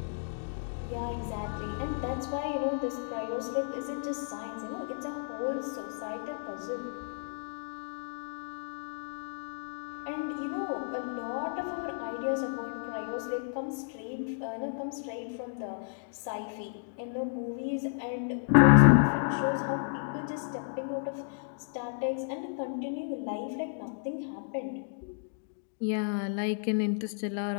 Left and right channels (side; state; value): right; silent; digital silence